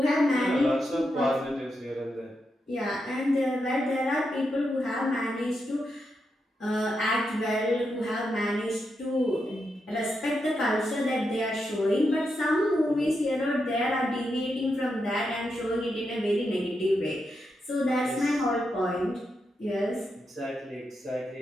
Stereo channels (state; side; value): normal; both; correlation 0.85